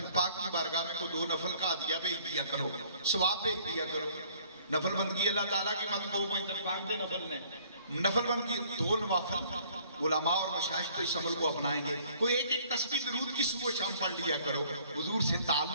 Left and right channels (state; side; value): inverted; both; correlation -0.58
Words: پاک کی بارگاہ میں کوئی 2 نفل کا عطیہ بھیج دیا کرو, ثواب بھیج دیا کرو. نفل بندگی اللہ تعالیٰ کی مت کو پنجتن پاک کے نفل میں نفل بندگی 2 نوافل علماء اور مشائخ تو اس عمل کو اپنائیں گے. کوئی ایک ایک تسبیح درود کی صبح شام پڑھ لیا کرو. حضور سے